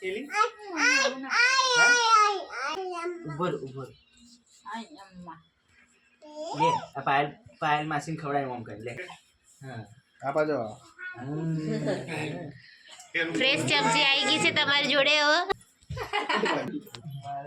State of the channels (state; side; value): identical; both; correlation 1.00